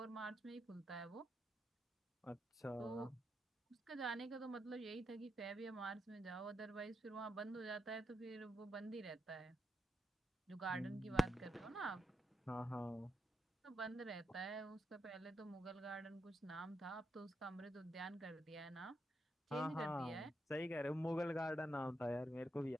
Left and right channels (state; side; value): normal; both; correlation 0.84